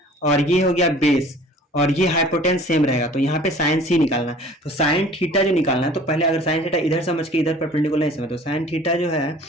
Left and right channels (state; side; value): normal; both; correlation 0.48